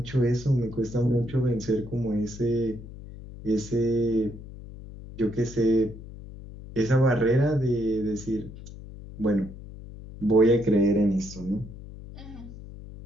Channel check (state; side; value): noise; left; hum, 14 dB below the sound